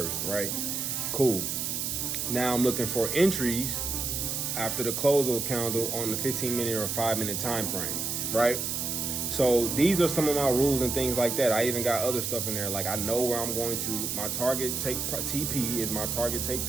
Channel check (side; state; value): right; noise; hiss, 2 dB below the sound